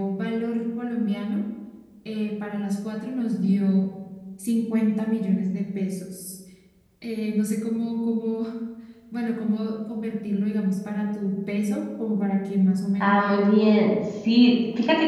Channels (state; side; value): identical; both; correlation 1.00